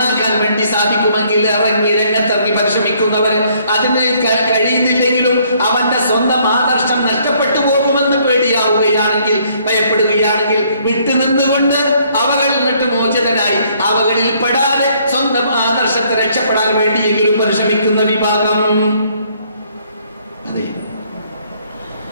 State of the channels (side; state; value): both; inverted; correlation -0.65